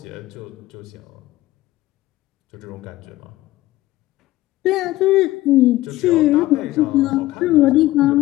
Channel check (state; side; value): quieter; right; 16.8 dB